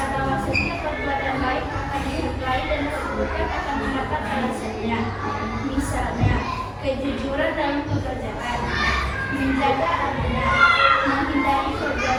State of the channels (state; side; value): identical; both; correlation 1.00